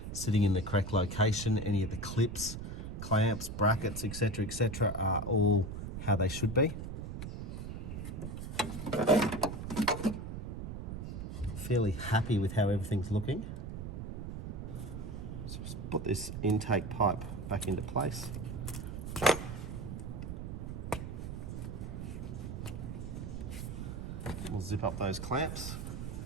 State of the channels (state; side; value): noise; right; rumble, 6 dB below the sound